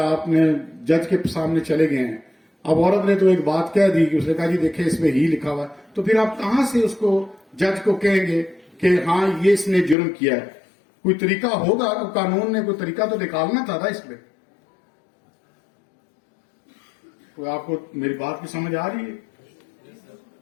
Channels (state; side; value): drops out; right; at 10.0 s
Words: آپ نے جج کے سامنے چلے گئے ہیں، اب عورت نے تو ایک بات کہہ دی کہ اس نے کہا جی دیکھیں اس میں ہی لکھا ہوا ہے، تو پھر آپ کہاں سے اس کو جج کو کہیں گے کہ ہاں یہ اس نے جرم کیا ہے؟ کوئی طریقہ ہوگا، قانون نے کوئی طریقہ تو نکالنا تھا نا اس میں. کوئی آپ کو میری بات کی سمجھ آ رہی ہے؟